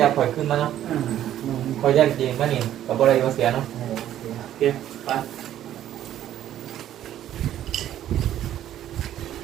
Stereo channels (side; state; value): left; quieter; 11.8 dB